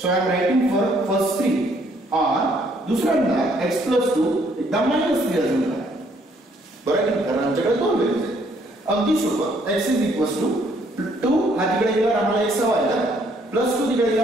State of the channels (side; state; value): both; normal; correlation 0.66